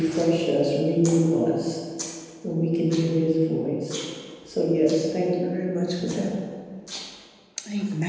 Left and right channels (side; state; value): both; identical; correlation 1.00